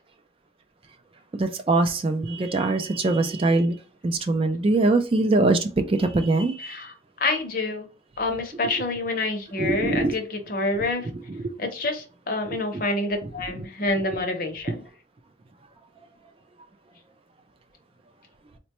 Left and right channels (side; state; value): both; normal; correlation 0.47